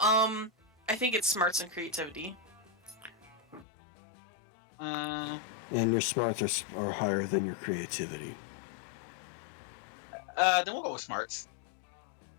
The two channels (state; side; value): drops out; right; at 3.7 s